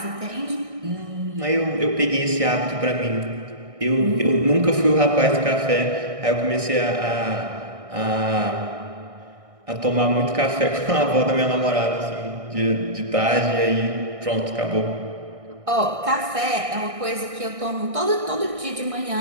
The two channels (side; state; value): left; late; 1.6 ms